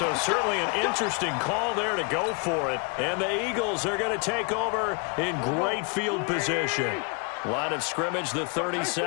certainly an interesting call there to go for it. And the Eagles are going to take over in great field position. Line of scrimmage, the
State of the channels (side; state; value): right; quieter; 34.7 dB